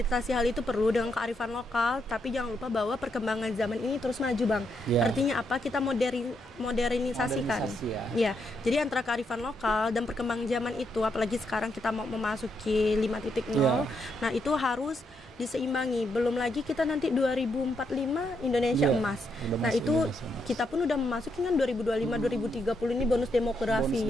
hal itu, perlu dengan kearifan lokal. Tapi jangan lupa bahwa perkembangan zaman ini terus maju bang. Ya. Artinya apa? Kita modernisasikan. Modernisasi ya. Ya, jadi antara kearifan lokal dan perkembangan zaman itu, apalagi sekarang kita mau memasuki 5.0, Ya. nah itu harus diseimbangi. Belum lagi kita nanti 2045 Indonesia Ya, emas. udah Nah masuk itu Indonesia emas. kita pun udah memasuki kan 2025 2030 ini bonus demografi.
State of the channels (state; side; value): normal; both; correlation 0.79